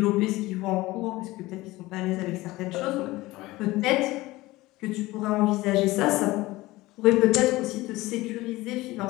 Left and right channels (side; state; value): right; quieter; 19.2 dB